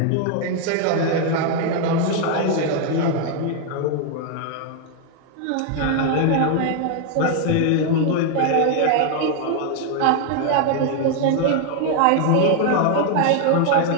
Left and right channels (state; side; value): different; both; correlation 0.00